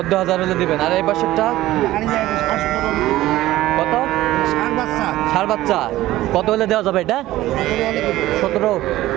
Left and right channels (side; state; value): left; quieter; 15.8 dB